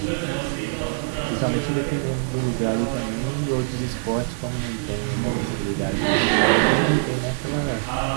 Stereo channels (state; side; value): silent; left; 63 dB below the other